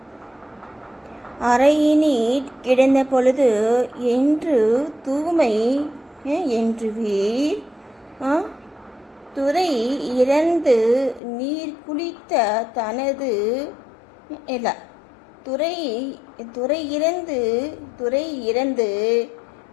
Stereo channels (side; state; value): right; drops out; at 11.2 s